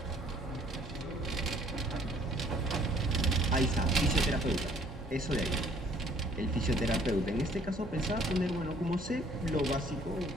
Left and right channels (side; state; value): both; normal; correlation 0.60